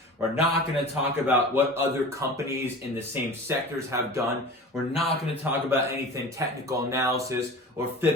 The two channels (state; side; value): normal; both; correlation 0.37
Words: We're not going to talk about what other companies in the same sectors have done. We're not going to talk about anything technical analysis or